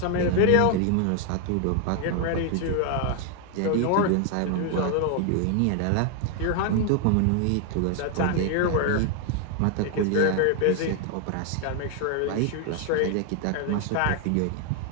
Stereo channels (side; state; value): both; different; correlation 0.00